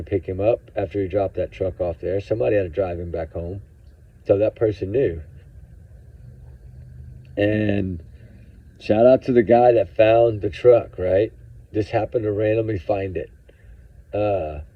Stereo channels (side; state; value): both; identical; correlation 1.00